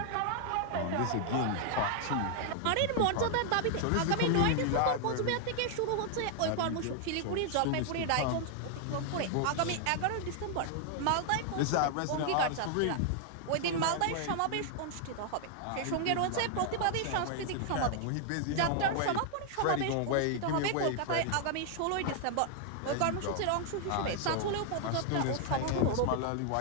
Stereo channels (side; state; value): both; different; correlation 0.00